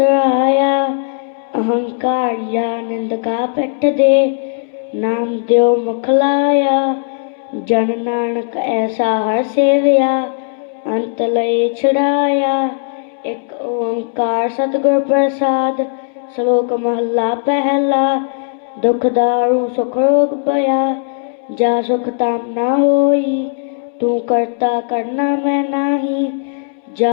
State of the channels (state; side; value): silent; right; 68 dB below the other